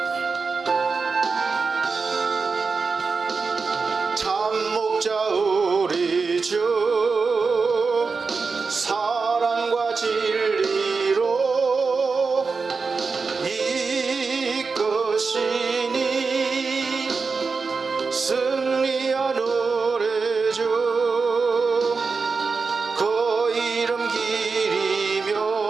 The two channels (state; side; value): quieter; left; 4.6 dB